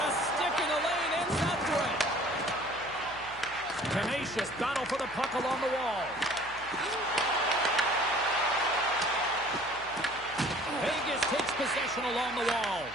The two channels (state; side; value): noise; left; hum, 21 dB below the sound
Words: a stick in the lane ends that threat. Tenacious battle for the puck along the wall. Vegas takes possession along the wall.